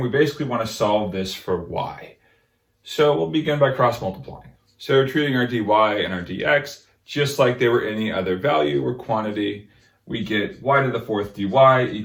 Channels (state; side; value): identical; both; correlation 1.00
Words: basically want to solve this for y. So we'll begin by cross multiplying. So we're treating our dy and our dx just like they were any other value or quantity. We get y to the fourth dy